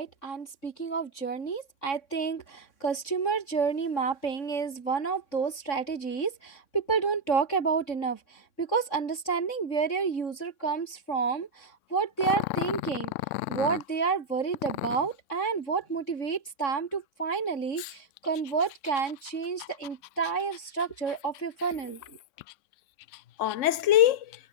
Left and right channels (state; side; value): late; right; 3.6 ms